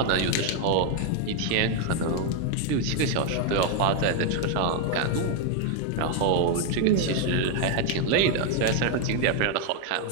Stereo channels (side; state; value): both; different; correlation 0.01